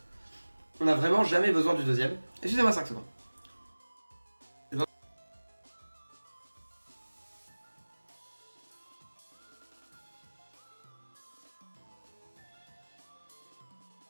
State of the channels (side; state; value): both; inverted; correlation -1.00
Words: On a vraiment jamais besoin du deuxième. Excusez-moi 5 secondes.